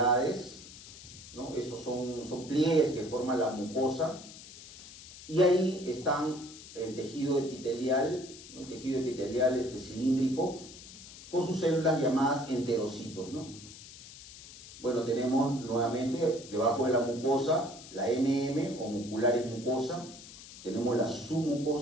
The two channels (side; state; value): left; noise; hiss, 16 dB below the sound